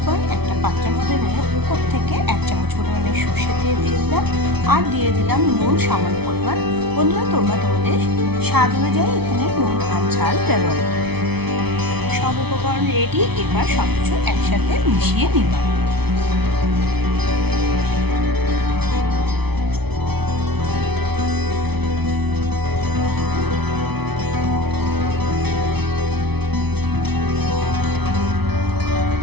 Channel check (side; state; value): left; late; 0.99 ms